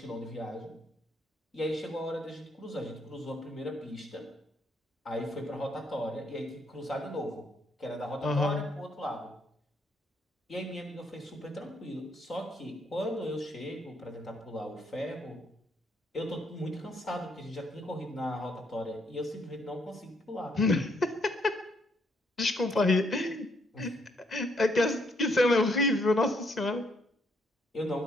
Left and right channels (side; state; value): both; normal; correlation 0.71